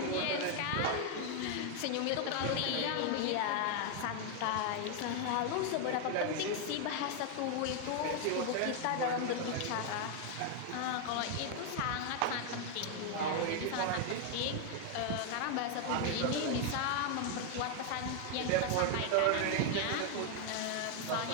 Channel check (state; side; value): different; both; correlation 0.00